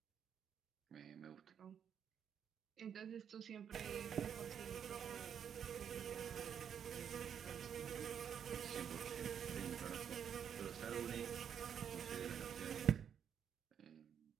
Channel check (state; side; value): quieter; left; 8.2 dB